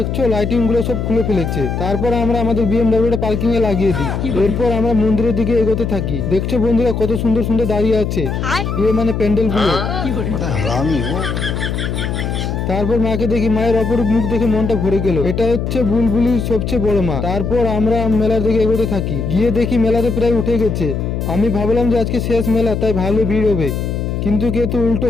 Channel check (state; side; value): noise; left; hum, 2 dB below the sound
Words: লাইটিং গুলো সব খুলে ফেলেছে। তারপর আমরা আমাদের BMW পার্কিং এ লাগিয়ে দিই। এরপর আমরা মন্দিরের দিকে এগোতে থাকি। দেখছো বন্ধুরা কত সুন্দর সুন্দর দাঁড়িয়ে আছে, মানে প্যান্ডেল গুলো। তারপর মাকে দেখি, মায়ের অপরূপ মুখ দেখে মনটা ভরে গেল। এটা হচ্ছে বুলবুলির সবচেয়ে বড় মা। তারপর আমরা মেলার দিকে এগোতে থাকি। গিয়ে দেখি মেলাতে প্রায় উঠে গেছে। আমি ভাবলাম যে আজকে শেষ মেলা, তাই ভালো ভিড় হবে, কিন্তু কিন্তু উল্টো